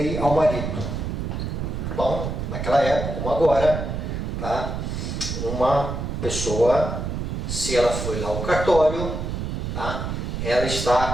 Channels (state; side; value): noise; right; rumble, 3 dB below the sound